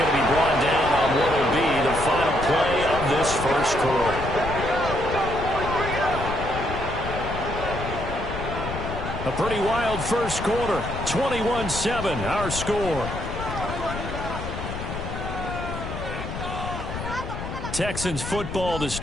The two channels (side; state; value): left; noise; rumble, 7 dB below the sound